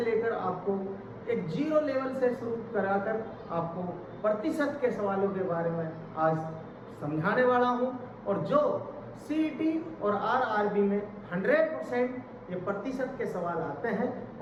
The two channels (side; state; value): both; identical; correlation 1.00